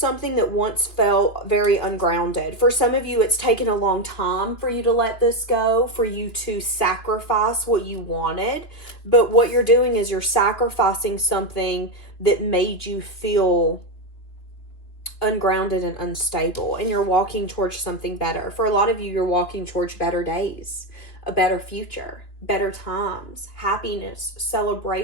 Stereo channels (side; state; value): right; late; 2.9 ms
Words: that once felt very ungrounded. For some of you, it's taken a long time for you to let this go, for you to sacrifice what you wanted. But what you're doing is you're sacrificing something that made you feel ungrounded and unstable. And you're walking towards something better. For a lot of you, you're walking towards better days, a better future, better times, happiness,